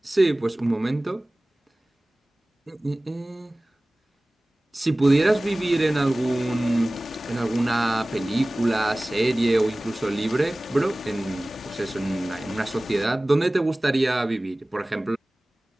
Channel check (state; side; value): normal; both; correlation 0.98